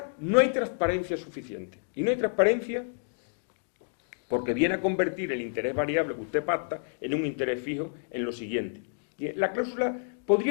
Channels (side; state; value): right; silent; digital silence